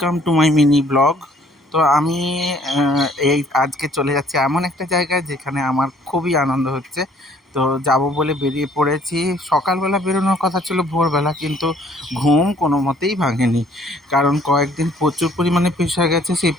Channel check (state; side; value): normal; both; correlation 0.59